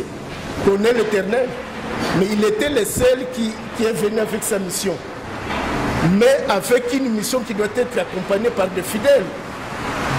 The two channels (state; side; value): identical; both; correlation 1.00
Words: connaît l'éternel. Mais il était le seul qui est venu avec sa mission. Mais avec une mission qui doit être accompagnée par des fidèles.